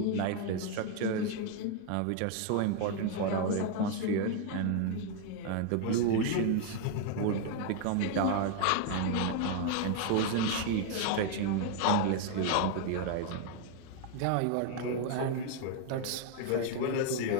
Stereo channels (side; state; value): both; different; correlation 0.01